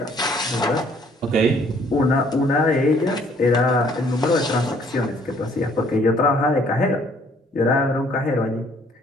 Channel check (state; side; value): normal; both; correlation 0.61